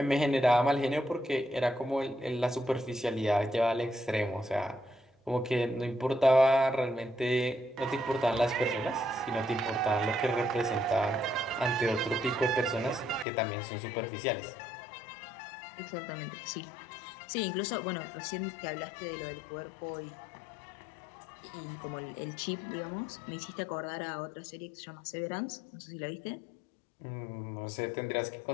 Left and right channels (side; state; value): right; drops out; at 13.2 s